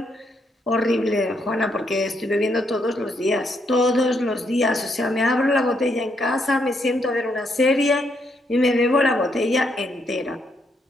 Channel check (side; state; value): both; normal; correlation 0.76